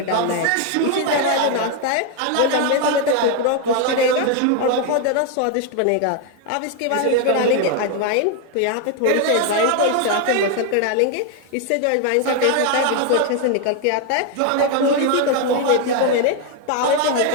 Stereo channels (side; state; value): both; different; correlation 0.01